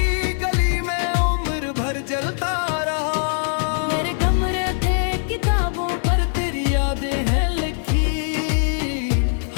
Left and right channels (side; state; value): right; silent; 62 dB below the other